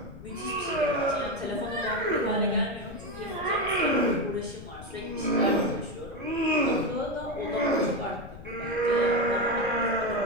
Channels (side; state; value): left; noise; rumble, 15 dB below the sound